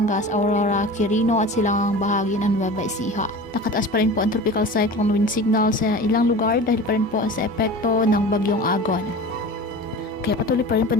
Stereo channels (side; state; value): both; normal; correlation 0.35